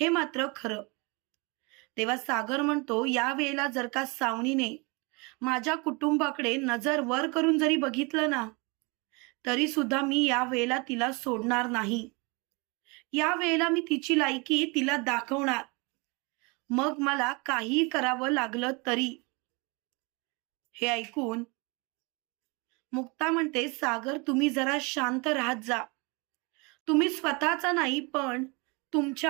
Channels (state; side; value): quieter; left; 28.9 dB